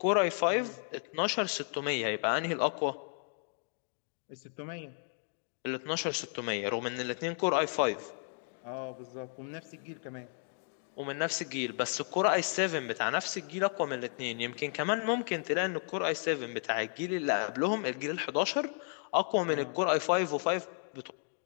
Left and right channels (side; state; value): right; silent; 55 dB below the other